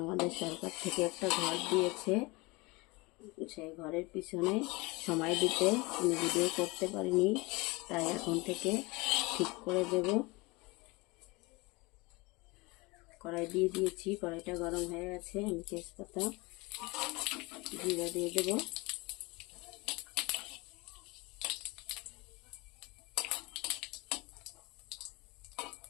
আমাদের সরকার থেকে একটা ঘর দিয়েছে। সেই ঘরের পিছনে সময় দিতে আমি ভিডিও করতে পারিনি, তাই এখন থেকে ঠিক করে দেব। কড়াই দিয়ে দিয়েছি, কড়াইটা গরম হয়ে গেছে। আমি তেজপাতা, জিরা দিয়ে দেব।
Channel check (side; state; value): right; quieter; 24.7 dB